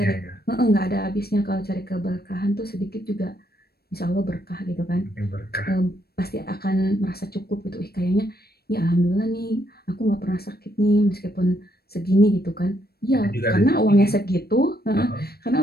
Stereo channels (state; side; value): late; right; 0.46 ms